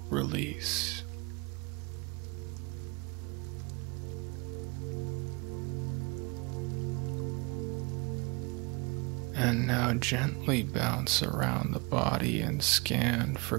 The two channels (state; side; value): quieter; left; 29.0 dB